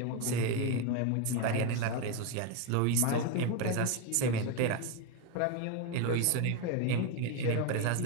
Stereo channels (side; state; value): both; different; correlation 0.02